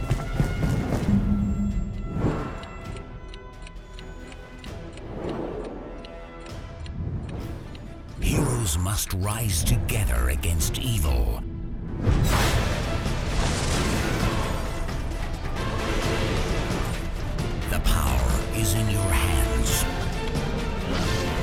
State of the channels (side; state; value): both; identical; correlation 1.00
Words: Heroes must rise together against evil. The power is in your hands.